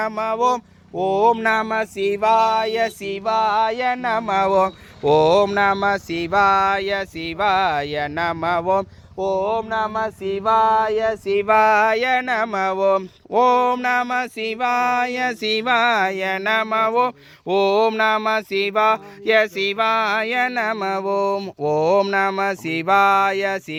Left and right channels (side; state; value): both; identical; correlation 1.00